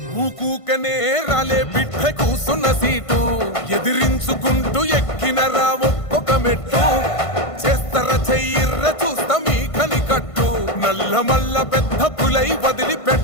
ఊకూకనే రాలే బిడ్డ కూసున్న సీటు ఎదిరించుకుంటూ ఎక్కినరా ఒక్కొక్క మెట్టు చేస్తర చెయ్యిర్ర చూస్తా మీ కనికట్టు నల్ల మల్ల పెద్ద పులై వదిలి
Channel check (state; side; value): late; right; 1.5 ms